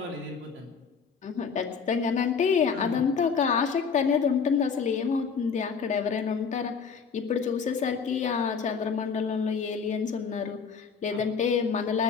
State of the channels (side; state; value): right; quieter; 5.9 dB